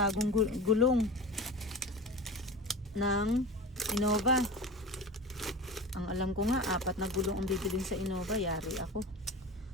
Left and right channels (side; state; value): both; normal; correlation 0.31